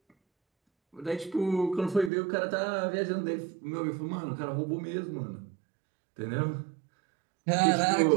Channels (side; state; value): left; drops out; at 2.1 s